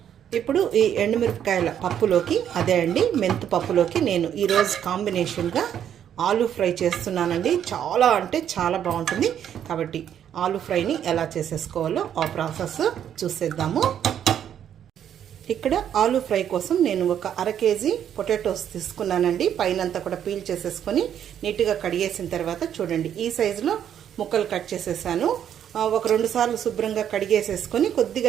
ఇప్పుడు ఈ ఎండుమిరపకాయల పప్పులోకి, అదే అండి మెంతు పప్పులోకి నేను ఈరోజు కాంబినేషన్గా ఆలూ ఫ్రై చేస్తున్నానండి. చాలా అంటే చాలా బాగుంటుంది. కాబట్టి ఆలూ ఫ్రైని ఎలా చేసేసుకోవాలో ఆ ప్రాసెస్ చూసేద్దాము. ఇక్కడ ఆలూ ఫ్రై కోసం నేను ఒక 1/2 కేజీ పొటాటోస్ తీసుకున్నానండి. పైనంతా కూడా పీల్ చేసేసుకొని నీట్గా కడిగేసిన తర్వాత చూడండి, ఈ సైజులో ముక్కలు కట్ చేసేసాను. ఒక 2 సార్లు శుభ్రంగా కడిగేసేసుకొని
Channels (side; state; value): left; quieter; 9.6 dB